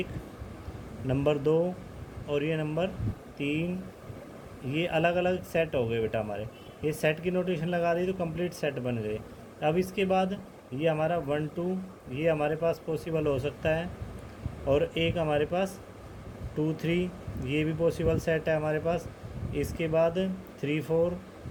नंबर 2 और ये नंबर 3। ये अलग अलग सेट हो गए बेटा हमारे, ये सेट की नोटेशन लगा दी तो कंप्लीट सेट बन गए। अब इसके बाद ये हमारा 1 2 ये हमारे पास पॉसिबल हो सकता है, और एक हमारे पास 2 3 ये भी पॉसिबल सेट है हमारे पास। इसके बाद 3 4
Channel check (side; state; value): both; identical; correlation 1.00